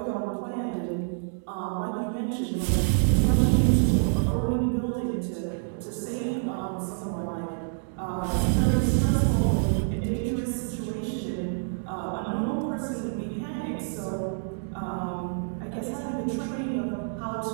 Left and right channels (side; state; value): left; silent; digital silence